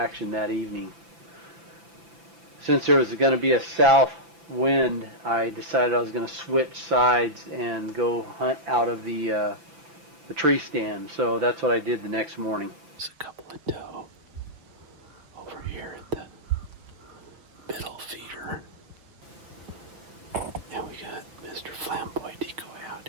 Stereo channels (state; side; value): late; left; 6.0 ms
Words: that evening. Since there was going to be a south wind, I decided I was going to switch sides and go hunt out of the tree stand. So that's what I did the next morning. There's a couple of doe over here at the middle feeder. Yeah, we got Mr. Flamboy decoy out